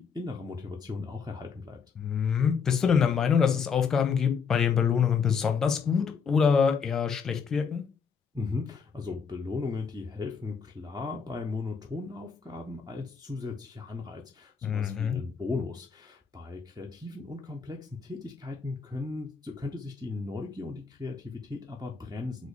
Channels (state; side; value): quieter; right; 6.1 dB